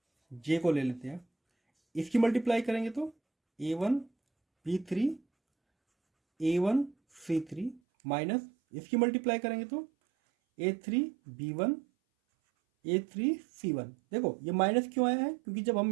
j को ले लेते हैं, इसकी मल्टीप्लाई करेंगे तो a1 b3 a1 c3 minus इसकी मल्टीप्लाई करेंगे तो a3 b1 a3 c1। देखो ये माइनस क्यों आया है, क्योंकि जब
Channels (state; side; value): drops out; left; at 7.8 s